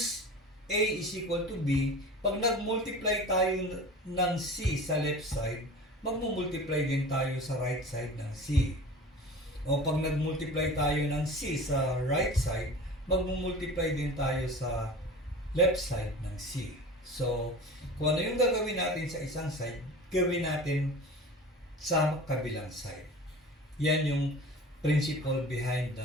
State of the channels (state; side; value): normal; both; correlation 0.37